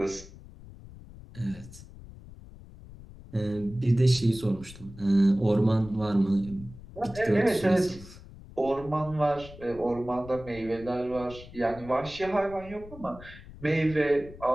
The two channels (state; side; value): noise; left; rumble, 17 dB below the sound